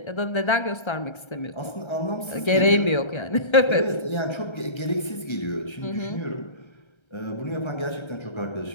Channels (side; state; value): right; late; 1.3 ms